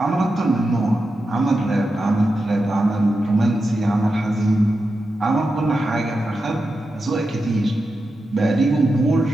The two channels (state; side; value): normal; both; correlation 0.90